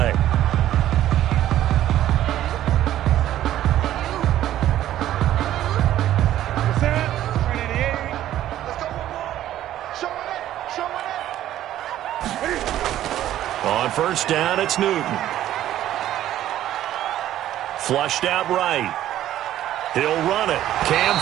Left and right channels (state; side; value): quieter; left; 12.7 dB